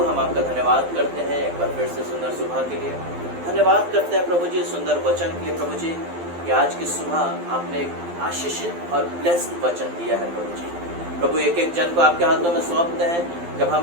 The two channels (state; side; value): late; left; 12 ms